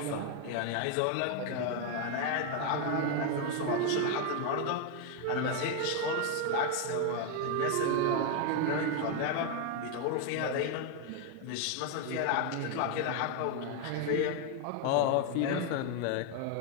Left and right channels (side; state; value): both; different; correlation 0.01